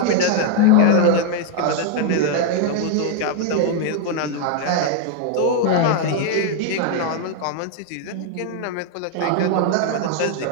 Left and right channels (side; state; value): both; different; correlation 0.00